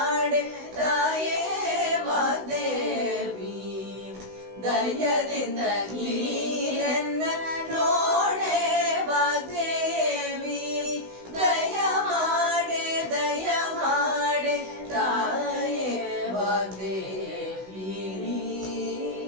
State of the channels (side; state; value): left; late; 16 ms